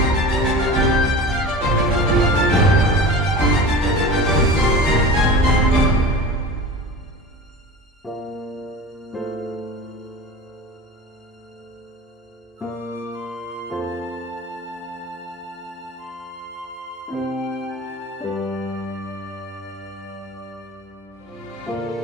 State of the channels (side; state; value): both; normal; correlation 0.34